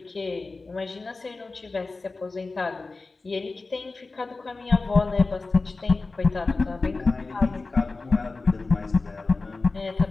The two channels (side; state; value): right; quieter; 3.7 dB